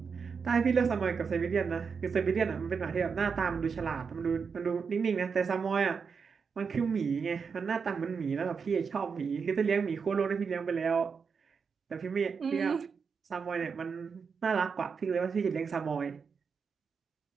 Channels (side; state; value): left; quieter; 5.8 dB